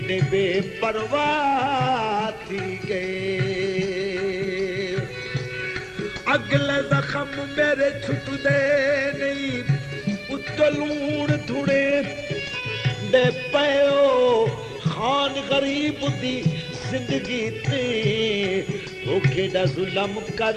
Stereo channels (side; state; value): both; identical; correlation 1.00